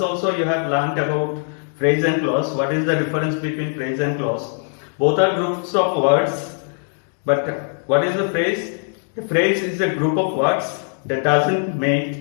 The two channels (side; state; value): right; silent; 56 dB below the other